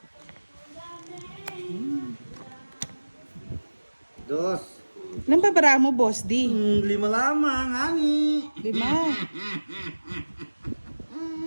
Dos. Ilan ba bara mo, Boss D? 5 lamang, ani. 5.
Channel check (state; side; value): inverted; both; correlation -1.00